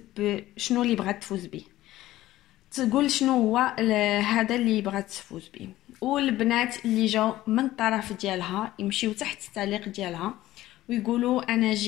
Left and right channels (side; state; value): right; quieter; 15.5 dB